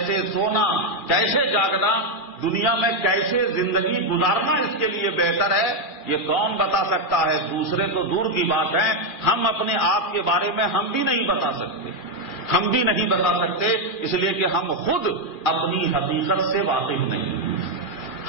سونا، کیسے جاگنا، دنیا میں کیسے زندگی گزارنا اس کے لیے بہتر ہے، یہ کون بتا سکتا ہے؟ دوسرے تو دور کی بات ہے، ہم اپنے آپ کے بارے میں ہم بھی نہیں بتا سکتے، اس لیے کہ ہم خود اپنی حقیقت سے واقف نہیں،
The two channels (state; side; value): late; right; 2.4 ms